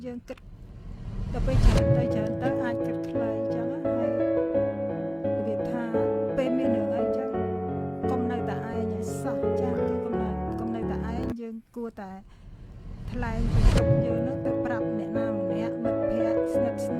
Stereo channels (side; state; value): both; identical; correlation 1.00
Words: យើងគិតដល់ពេលច្រើនទៅអាចគិតខ្លីអញ្ចឹងហើយវាថាពេលមានរឿងអីអញ្ចឹងកុំនៅតែឯងឲ្យសោះចាគឺកុំនៅតែឯងយើងគួរតែថ្លែងពីទុកយើងនឹងទៅប្រាប់អ្នកណាម្នាក់មិត្តភ័ក្តិស្និទ្ធស្